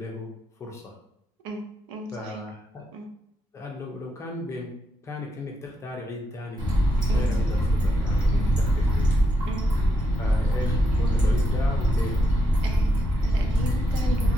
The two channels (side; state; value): both; normal; correlation 0.81